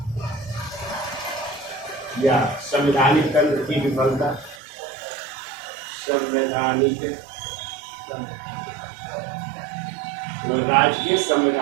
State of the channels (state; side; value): drops out; left; at 4.6 s